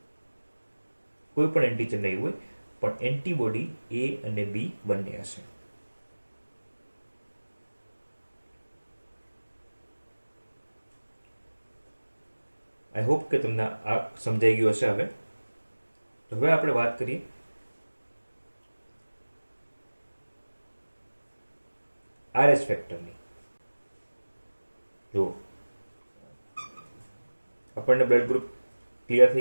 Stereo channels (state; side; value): inverted; both; correlation -1.00